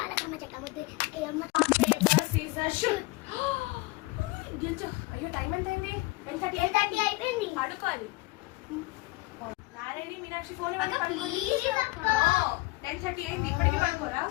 చెమ్మ చెక్క ముద్దు అమ్మ. అయ్యో టైం ఎంత అయింది? 10:30 అయిపోయింది. పడుకోవాలి. నారాయణి మీనాక్షి ఫోన్ 10:30 అయింది, ఇప్పటికీ పడుకోరా?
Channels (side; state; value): right; quieter; 22.5 dB